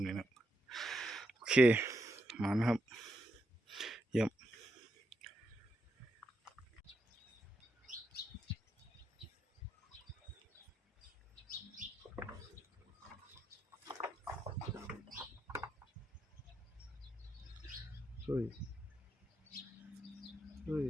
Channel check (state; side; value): normal; both; correlation 0.82